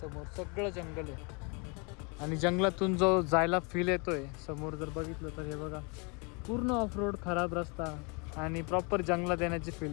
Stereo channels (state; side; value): quieter; right; 32.7 dB